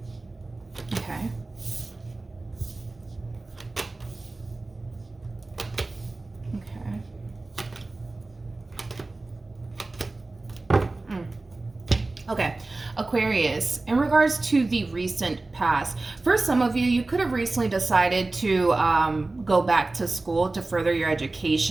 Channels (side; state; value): left; quieter; 3.2 dB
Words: Okay. Okay, Aquarius, in regards to the recent past, for some of you, you could have recently decided to go back to school to further your